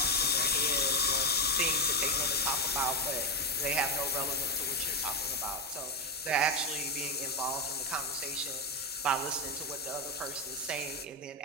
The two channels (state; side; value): normal; both; correlation 0.08